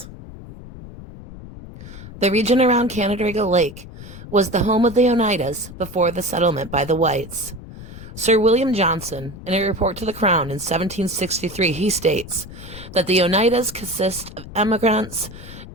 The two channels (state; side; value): noise; left; rumble, 14 dB below the sound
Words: The region around Canandaigua Lake was the home of the Oneidas before the settlement by the whites. Sir William Johnson, in a report to the Crown in 1763, he states that the Oneidas consist of emigrants